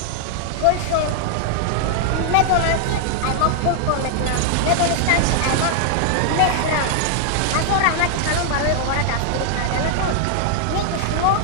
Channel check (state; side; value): different; both; correlation 0.00